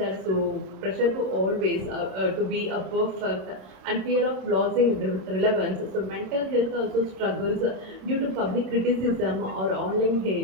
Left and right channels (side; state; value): left; late; 27 ms